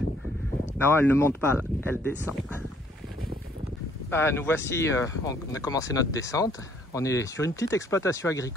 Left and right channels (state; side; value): normal; both; correlation 0.64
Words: Non, elle ne monte pas, là, elle descend. Ah, nous voici, on a commencé notre descente. On est sur une petite exploitation